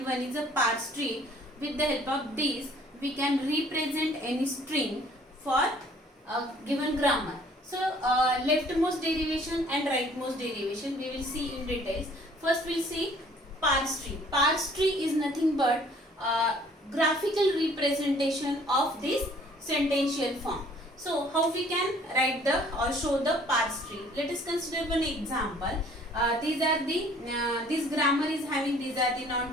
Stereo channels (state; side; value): normal; both; correlation 0.56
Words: one is a parse tree. With the help of these, we can represent any string for a given grammar. So, leftmost derivation and rightmost derivation we will see in details. First, we will see parse tree. Parse tree is nothing but graphical representation of this sentential form. So, how we can write the or show the parse tree? Let us consider one example. These are the this grammar is having, these are the